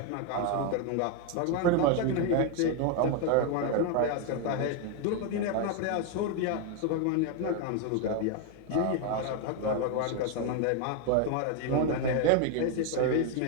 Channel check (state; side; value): different; both; correlation 0.01